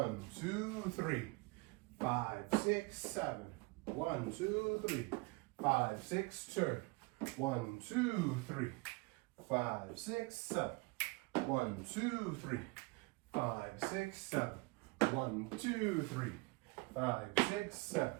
2, 3, 5, 6, 7, 1, 2, 3, 5, 6, turn, 1, 2, 3, 5, 6, 7, 1, 2, 3, 5, 6, 7, 1, 2, 3, 5, 6, 7,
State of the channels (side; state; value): left; quieter; 25.8 dB